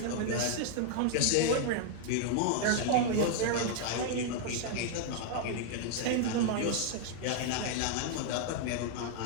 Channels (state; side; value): different; both; correlation 0.00